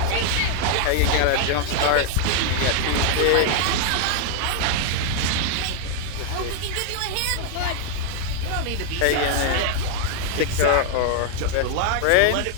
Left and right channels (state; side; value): different; both; correlation -0.01